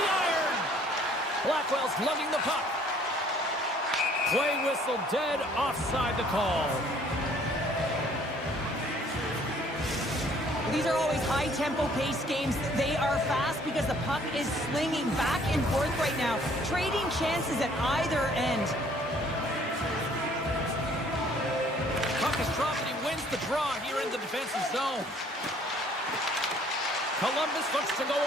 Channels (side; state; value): both; normal; correlation 0.59